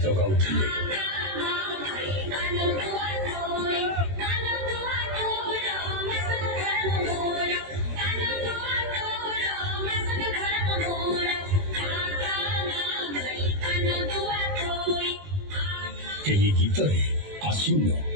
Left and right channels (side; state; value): left; late; 21 ms